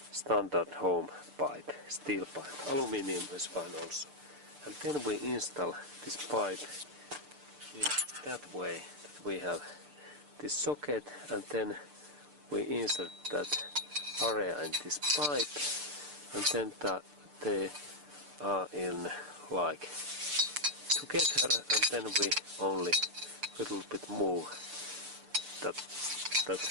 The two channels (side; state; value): left; late; 6.8 ms